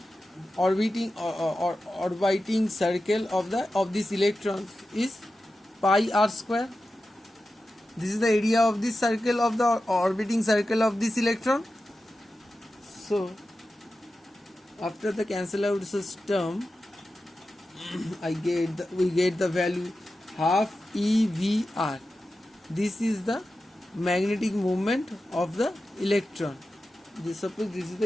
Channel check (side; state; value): both; normal; correlation 0.92